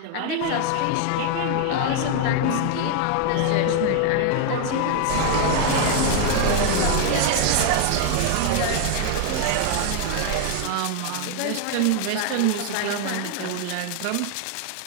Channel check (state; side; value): different; both; correlation 0.00